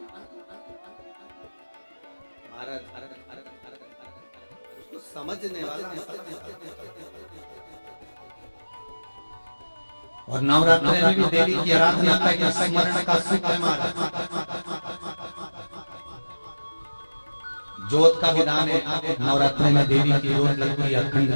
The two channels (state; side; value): inverted; both; correlation -1.00